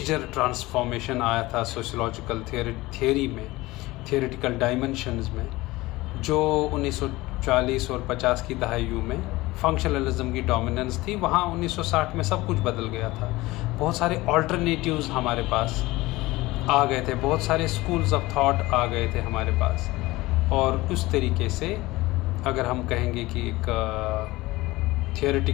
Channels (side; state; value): right; quieter; 19.7 dB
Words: ट्रांसफॉर्मेशन आया था सोशियोलॉजिकल थियोरी में, थियोरेटिकल डायमेंशंस में, जो 1940 और 50 की दहाइयों में फंक्शनलिज्म की डोमिनेंस थी, वहाँ 1960 में सब कुछ बदल गया था। बहुत सारे ऑल्टरनेटिव्स हमारे पास आ गए थे, बहुत सारे स्कूल्स ऑफ थॉट आ गए थे हमारे पास। और उस तरीके से अगर हम कहेंगे कि एक